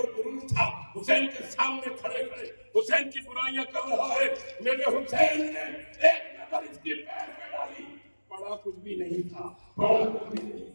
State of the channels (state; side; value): inverted; both; correlation -1.00